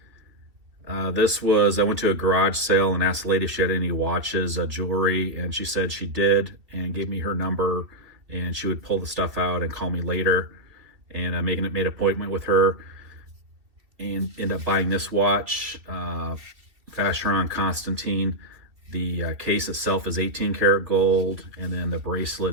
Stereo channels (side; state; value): left; late; 2.5 ms